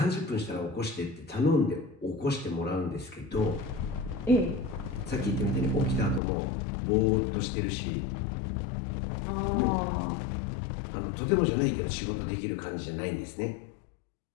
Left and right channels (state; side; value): drops out; right; at 6.2 s